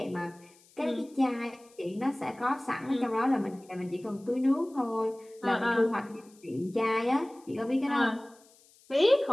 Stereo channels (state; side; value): noise; left; hiss, 28 dB below the sound